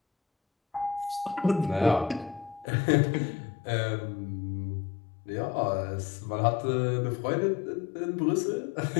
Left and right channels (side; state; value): right; drops out; at 2.7 s